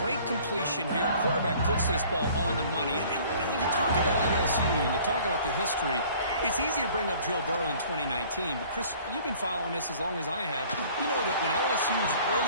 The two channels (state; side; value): inverted; both; correlation -0.52